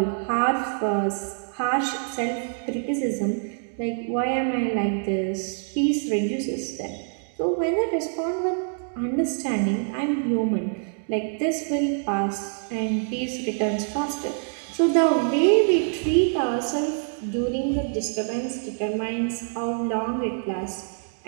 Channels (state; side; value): silent; left; 59 dB below the other